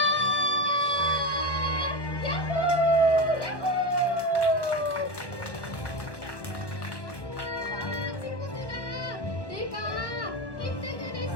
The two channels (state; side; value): late; right; 1.1 ms